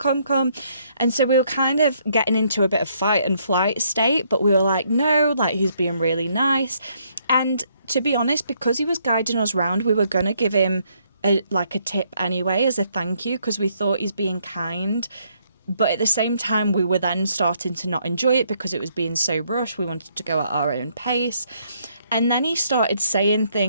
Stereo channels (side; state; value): both; inverted; correlation -0.71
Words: And so we were kind of getting into a bit of fight and flight state, but we were like, no, like, he's being really nice. And to be honest, because he was guiding us around, we were going to give him a tip anyway as a thank you, because we thought he's being kind. But at the same time, we were then starting to not enjoy it because it was being so rushed. We wanted to go at our own pace. And then he started saying